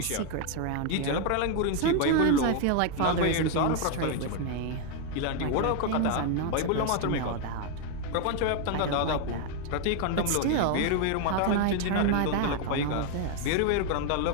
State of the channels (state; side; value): different; both; correlation 0.01